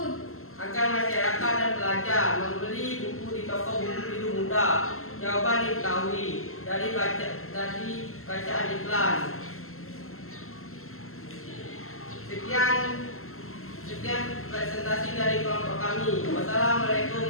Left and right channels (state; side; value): late; right; 0.62 ms